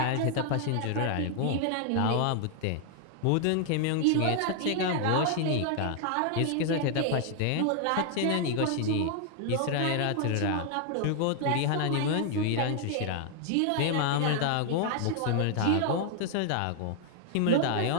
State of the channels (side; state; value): both; different; correlation 0.00